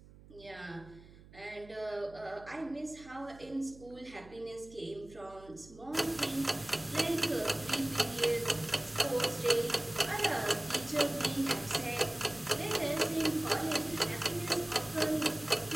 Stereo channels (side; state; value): right; noise; hum, 21 dB below the sound